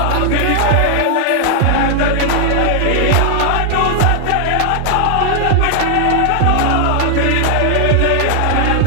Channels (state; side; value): different; both; correlation 0.00